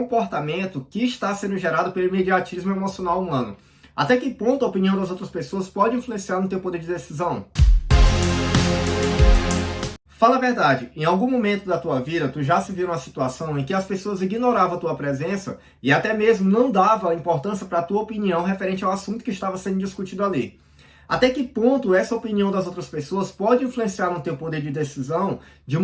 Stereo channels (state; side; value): identical; both; correlation 1.00